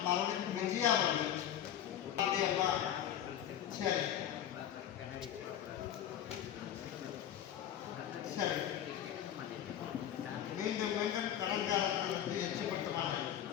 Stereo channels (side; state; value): right; quieter; 10.6 dB